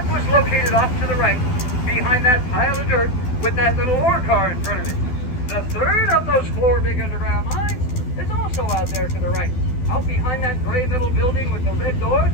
was located off to the right, behind that pile of dirt with that little ore car in front of it. The third of those 4 big underground mines is also out there to the right. Out behind that gray metal building with the red door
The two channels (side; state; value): right; late; 12 ms